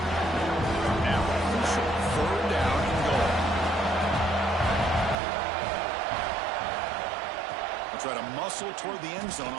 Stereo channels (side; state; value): left; drops out; at 5.2 s